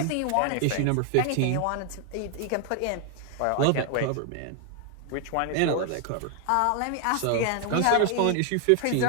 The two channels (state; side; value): different; both; correlation 0.00